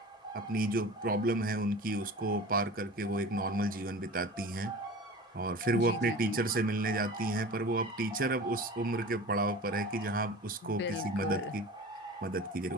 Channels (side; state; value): both; normal; correlation 0.37